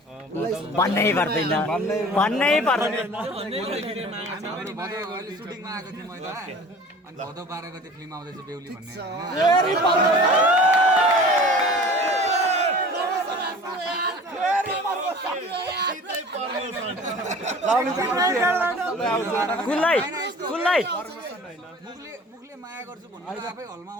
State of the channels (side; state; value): both; normal; correlation 0.43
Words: भन्नै पर्दैन सुटिङमा आएको थिएँ मैले अनि भदौ 12 गते फिल्म आउँदैछ बेहुली भन्ने मुखले माया गर्छु भन्नु आफै हलमा